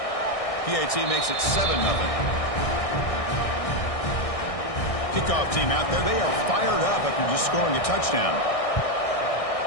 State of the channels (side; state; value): right; late; 1.6 ms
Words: PAT makes it 7-0. Kickoff team out there. They are fired up after just scoring a touchdown.